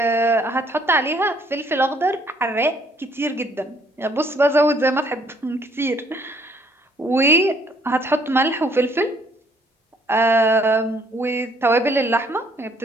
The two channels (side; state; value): both; normal; correlation 0.64